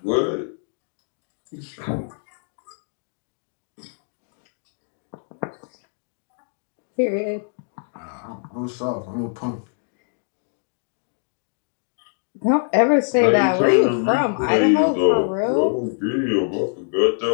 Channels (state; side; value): silent; right; 63 dB below the other